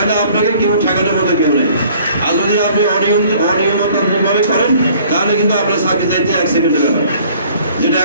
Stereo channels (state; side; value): inverted; both; correlation -0.55